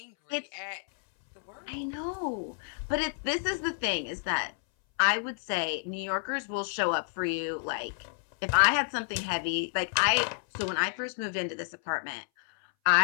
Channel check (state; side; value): silent; right; 58 dB below the other